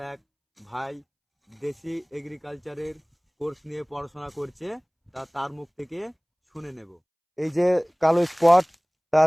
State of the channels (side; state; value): both; identical; correlation 1.00